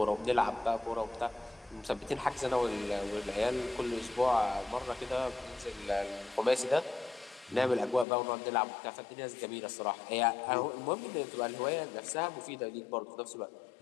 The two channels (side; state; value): right; drops out; at 8.1 s